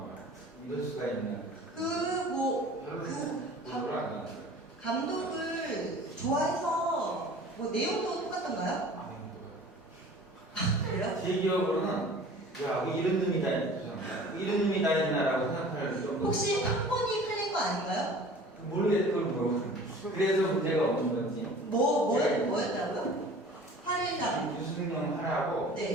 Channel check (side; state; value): both; normal; correlation 0.44